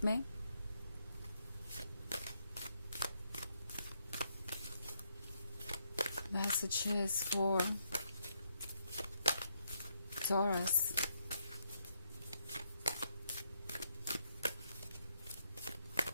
में। Messages for taurus.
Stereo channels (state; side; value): inverted; both; correlation -0.77